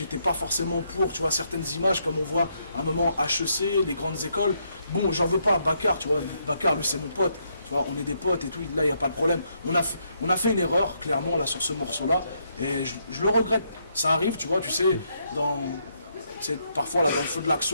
pas forcément pour, tu vois, certaines images comme on voit à un moment HEC, les grandes écoles. Bon, j'en veux pas à Bakar, tu vois. Bakar, lui, c'est mon pote. Tu vois, on est des potes et tout, là il n'y a pas de problème. On a fait une erreur, clairement, là sur ce morceau-là, et je le regrette. Ça arrive, tu vois, tu sais, parfois là dans le feu de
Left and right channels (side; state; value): both; inverted; correlation -0.75